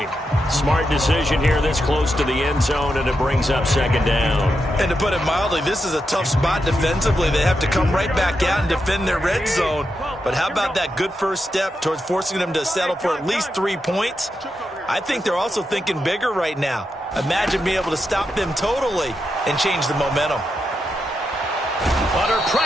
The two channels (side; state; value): both; normal; correlation 0.86